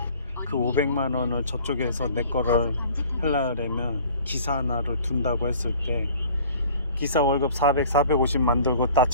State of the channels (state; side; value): inverted; both; correlation -0.49